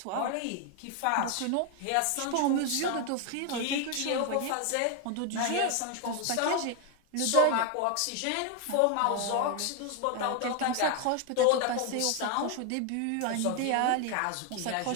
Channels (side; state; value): both; different; correlation 0.01